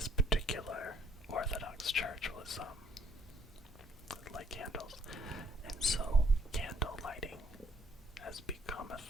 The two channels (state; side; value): normal; both; correlation 0.67